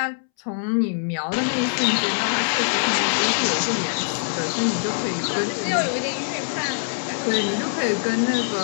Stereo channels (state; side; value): silent; right; 63 dB below the other